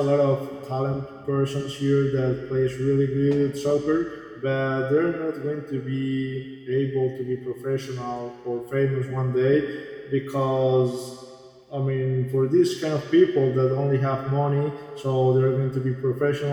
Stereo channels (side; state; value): both; identical; correlation 1.00